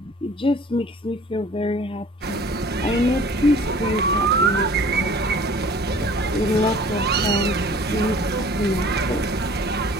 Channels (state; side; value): normal; both; correlation 0.49